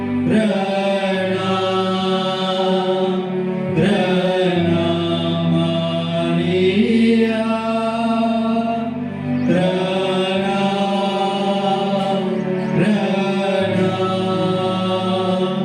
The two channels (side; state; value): both; identical; correlation 1.00